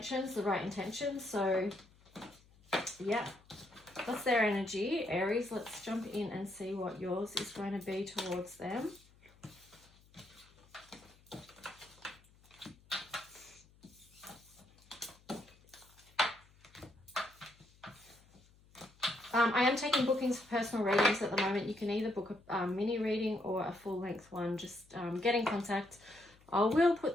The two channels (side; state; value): left; noise; hum, 28 dB below the sound